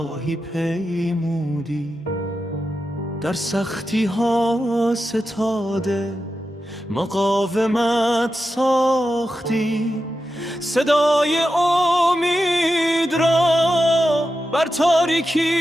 پیمودی، در سختی ها ستاده مقاومت ساختی، صدای امید را بر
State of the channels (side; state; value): both; normal; correlation 0.90